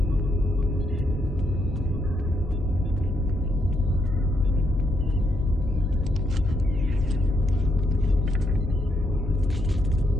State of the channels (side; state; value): both; normal; correlation 0.77